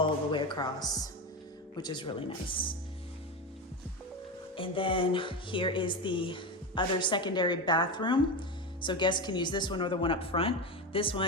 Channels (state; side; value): normal; both; correlation 0.18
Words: the way across, which is really nice. And then here is the other secondary bathroom. So guests can use this one or the one up front. This